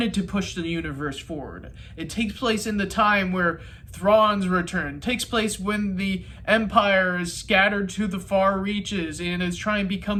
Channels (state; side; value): identical; both; correlation 1.00